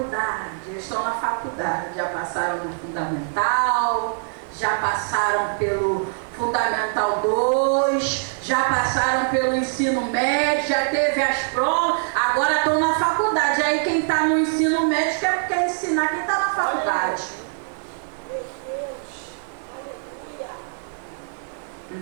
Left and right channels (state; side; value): silent; left; digital silence